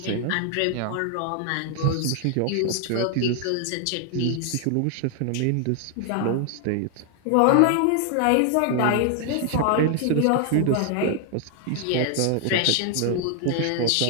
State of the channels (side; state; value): both; different; correlation 0.00